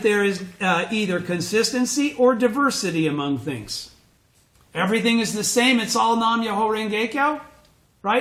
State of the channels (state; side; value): identical; both; correlation 1.00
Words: there is either consistency or diversity among things. Everything is the same. It's all Nam Myoho Renge Kyo,